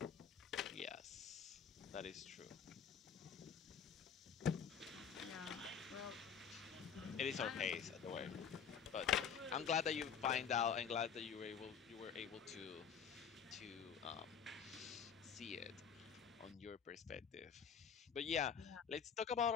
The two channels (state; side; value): quieter; right; 7.2 dB